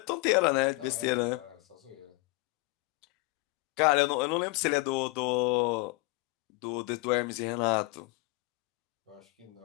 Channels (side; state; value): right; quieter; 24.1 dB